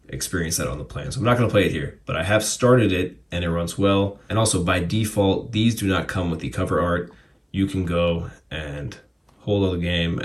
experience that on the plane. So I'm not going to play it here, but I have started it and it runs well. And also by default, these do not come with the cover art. You can go and hold on the game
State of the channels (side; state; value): both; identical; correlation 1.00